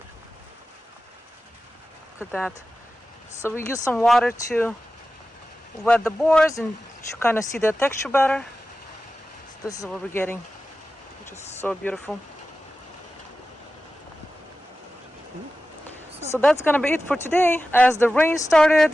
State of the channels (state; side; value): normal; both; correlation 0.94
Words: Look at that. So we use some water to wet the boards and to kind of see the texture better. So this is what we're getting, which is so beautiful. So that's gonna be it for today. As the rain